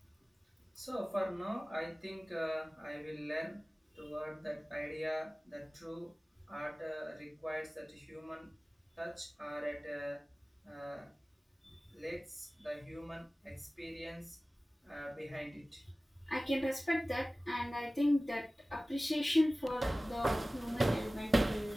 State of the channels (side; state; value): both; normal; correlation 0.97